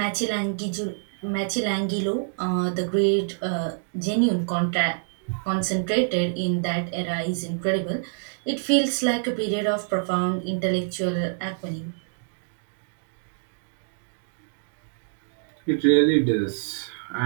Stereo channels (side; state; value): left; silent; digital silence